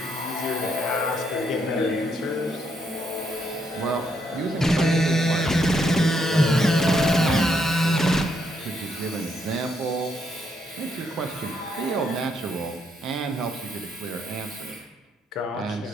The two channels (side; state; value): both; normal; correlation 0.75